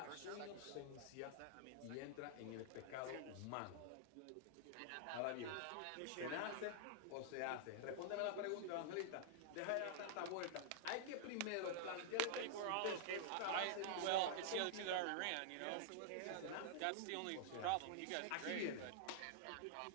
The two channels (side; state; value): both; different; correlation -0.01